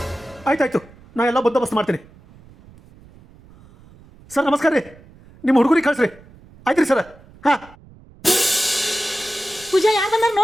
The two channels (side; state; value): right; noise; rumble, 25 dB below the sound